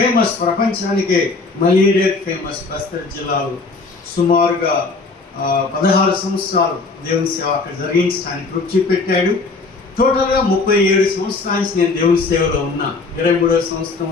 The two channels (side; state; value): right; quieter; 3.9 dB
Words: ప్రపంచానికే మలేరియా ఫేమస్ బస్తర్ జిల్లాలో. సుమారుగా 16 సంవత్సరాలు దేవుని సేవ అక్కడ జరిగించడానికి రుచి పెట్టాడు. టోటల్గా 37 సంవత్సరాల నుంచి నేను దేవుని సేవలో ఉన్నా. 23వ